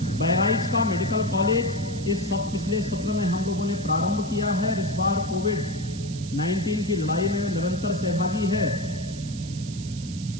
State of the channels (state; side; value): noise; right; hiss, 15 dB below the sound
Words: बहराइच का मेडिकल कॉलेज इस पिछले सत्र में हम लोगों ने प्रारंभ किया है। इस बार कोविड-19 की लड़ाई में निरंतर सहभागी है